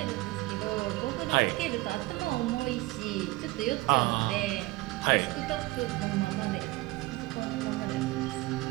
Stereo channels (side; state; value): left; quieter; 20.6 dB